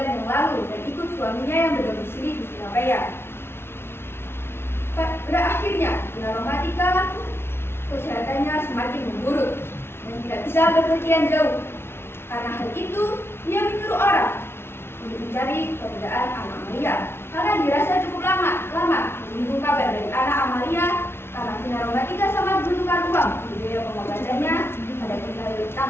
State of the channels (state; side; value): late; right; 0.12 ms